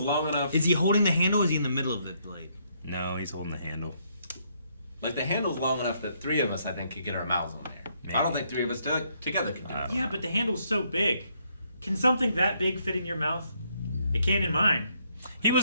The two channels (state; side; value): inverted; both; correlation -0.72